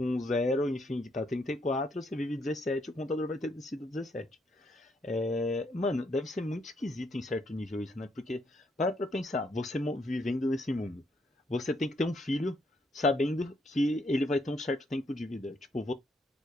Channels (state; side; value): normal; both; correlation 0.74